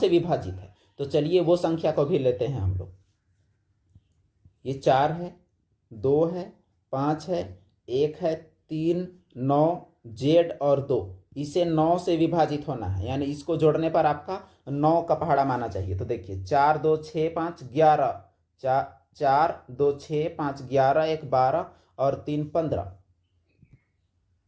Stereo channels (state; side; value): identical; both; correlation 1.00